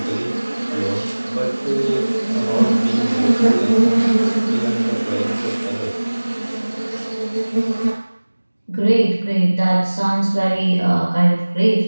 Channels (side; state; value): both; inverted; correlation -1.00